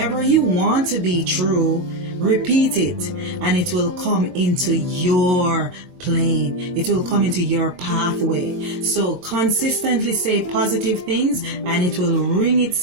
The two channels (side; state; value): left; late; 22 ms